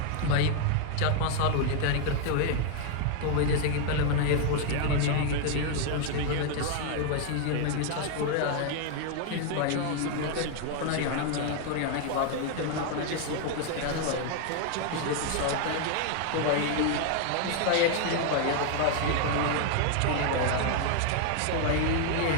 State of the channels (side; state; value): both; different; correlation 0.00